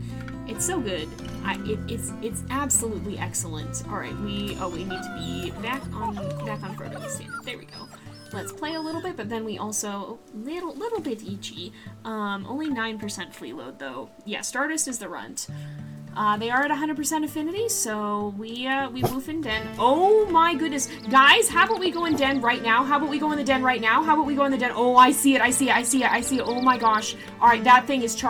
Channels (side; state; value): both; identical; correlation 1.00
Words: It's so good. It's absolutely excellent. All right, we need to be back on Frodo standard. There we go. Let's play a little bit, but then we also little bit itchy. Only 9% flea load though. Yeah, Stardust is the runt. They are at 100% affinity, so we woof in den. Oh my goodness. Guys, how about we go in den right now? How about we go in the den right now? How about we go in the den? Oh, I see it. Oh my gosh. Alright, that thing is